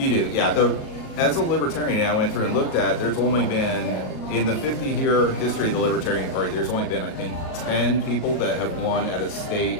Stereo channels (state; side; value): late; right; 38 ms